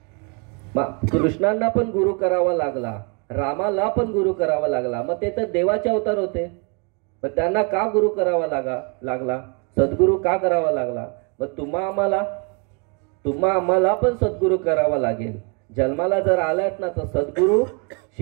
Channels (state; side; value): quieter; left; 34.7 dB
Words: कृष्णांना पण गुरु करावा लागला, रामाला पण गुरु करावा लागला. मग ते तर देवाचे अवतार होते, पण त्यांना का गुरु करावा लागला, सद्गुरु का करावा लागला. मग तुम्हा आम्हाला पण सद्गुरु करावा लागेल. जन्माला जर आलात ना तर सद्गुरु